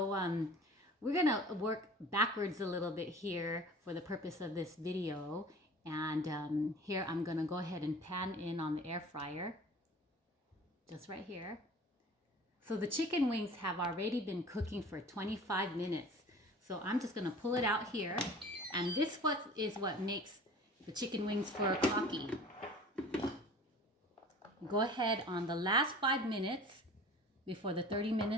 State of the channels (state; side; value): normal; both; correlation 0.43